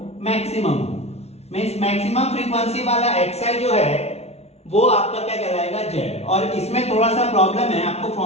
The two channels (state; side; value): late; right; 0.31 ms